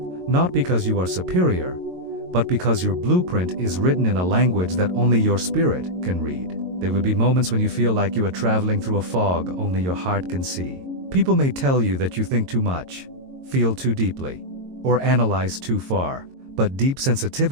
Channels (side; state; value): left; late; 22 ms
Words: not because you are superior, but because your blueprint is written in a language that only your spirit can read. There will be moments when you feel like you are traveling through a fog only your heart can see. People may tell you that you think too much, feel too deeply, or analyze too far, but deep